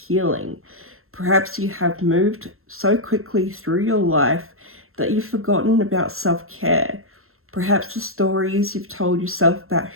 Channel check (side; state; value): left; late; 0.62 ms